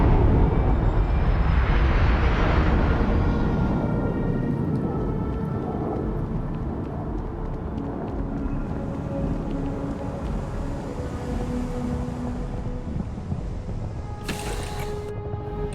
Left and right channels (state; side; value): identical; both; correlation 1.00